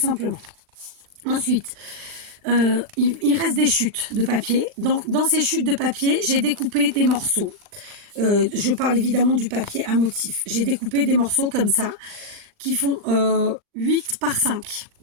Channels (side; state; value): left; late; 39 ms